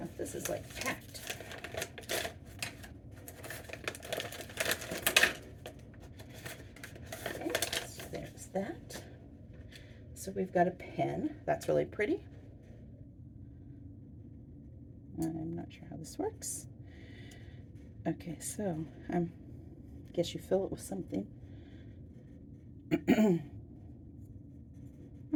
this is like packed. There's that. So we've got a pen. That's really pretty. I'm not sure how this works. Okay, so I guess you fill it with something.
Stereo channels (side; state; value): both; identical; correlation 1.00